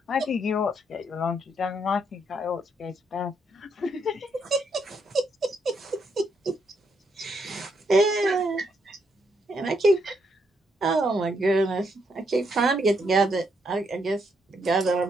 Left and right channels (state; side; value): normal; both; correlation 0.76